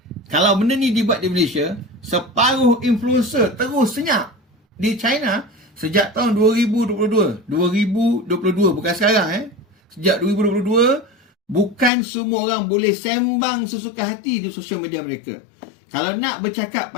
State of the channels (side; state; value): right; drops out; at 11.9 s